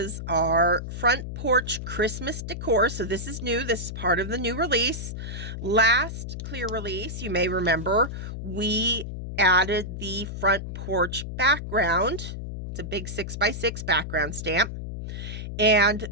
our front porch Christmas decor. So this is new. This is part of the new release. Last clear release, you may remember, we added the front porch background. It's a big 6x6 background stamp. And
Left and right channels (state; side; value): noise; left; hum, 7 dB below the sound